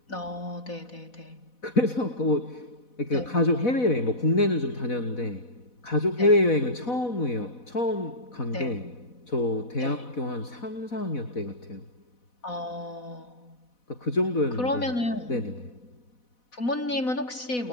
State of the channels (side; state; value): right; late; 4.1 ms